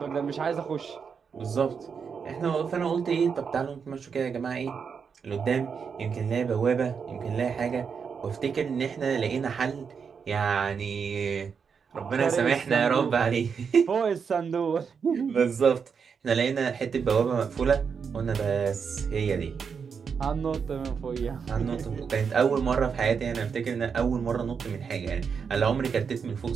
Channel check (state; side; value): quieter; left; 6.2 dB